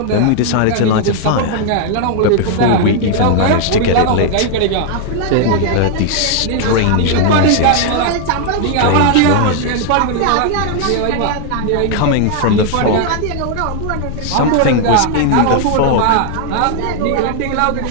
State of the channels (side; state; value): both; different; correlation 0.00